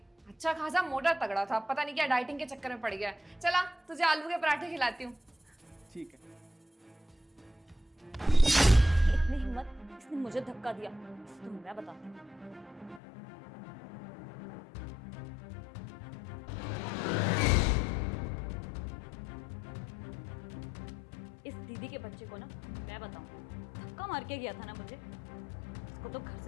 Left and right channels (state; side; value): drops out; right; at 13.0 s